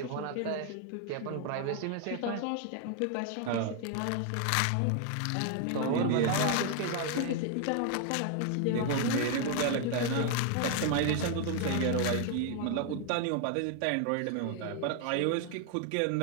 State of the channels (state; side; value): different; both; correlation 0.00